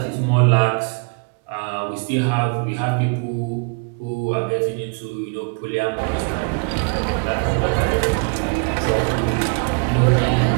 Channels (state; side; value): quieter; left; 36.5 dB